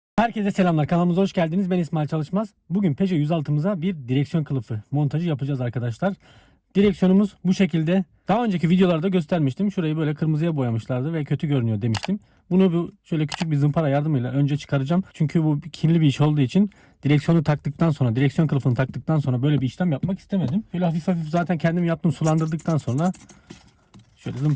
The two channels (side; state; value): both; identical; correlation 1.00